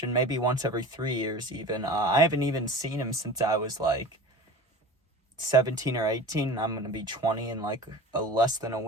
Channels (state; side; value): normal; both; correlation 0.37